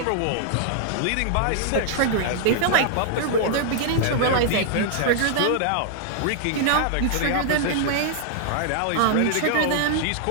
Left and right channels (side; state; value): both; different; correlation -0.01